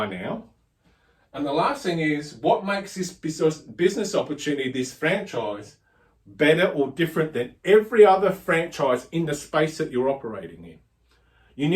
now. And the last thing is, what makes this business opportunity, this franchise, better or different than every other franchise in the space that you're operating in? You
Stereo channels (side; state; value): both; identical; correlation 1.00